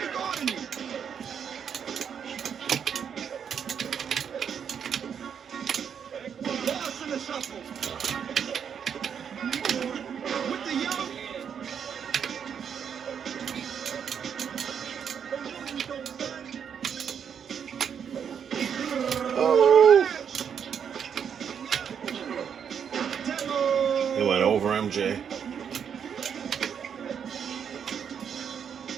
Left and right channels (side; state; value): left; quieter; 7.7 dB